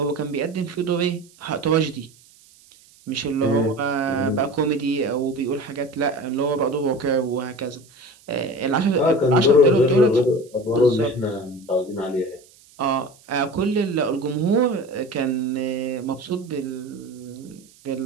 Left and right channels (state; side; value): noise; right; hiss, 27 dB below the sound